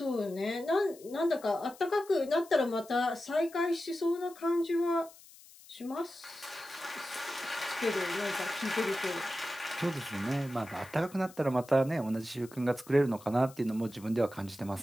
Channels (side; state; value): left; noise; hiss, 22 dB below the sound